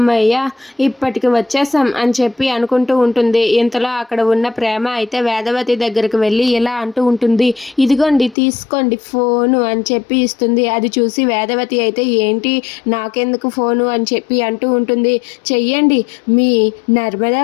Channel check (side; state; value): right; drops out; at 8.3 s